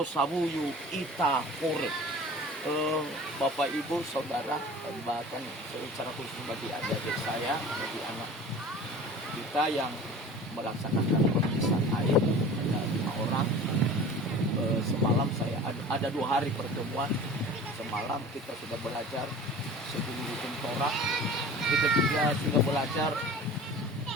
ita kore. Bapak Ibu Saudara bahkan secara khusus bagi adik saya bagi anak kita yang melaksanakan pemeriksaan air ada 5 orang. Semalam saya ada 2 hari pertemuan. Semalam kita sudah belajar sebelum Torah, kita juga sudah belajar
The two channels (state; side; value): normal; both; correlation 0.41